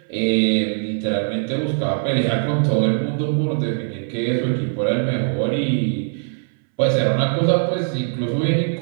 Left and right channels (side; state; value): left; silent; 65 dB below the other